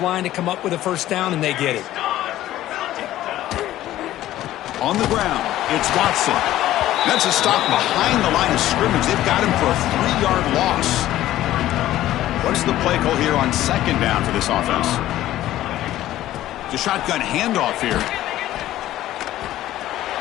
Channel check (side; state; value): right; quieter; 14.1 dB